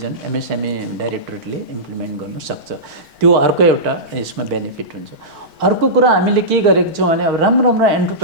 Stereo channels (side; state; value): left; late; 4.5 ms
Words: एमएसएमई डाइरेक्टोरेटले इम्प्लिमेन्ट गर्न सक्छ त्यो अर्को एउटा यसमा बेनिफिट हुन्छ अर्को कुरा हामीले के गरेको छौँ भने अब राम्रो राम्रो